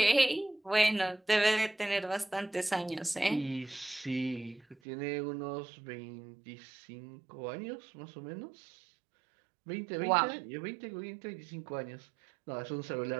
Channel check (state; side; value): drops out; left; at 4.8 s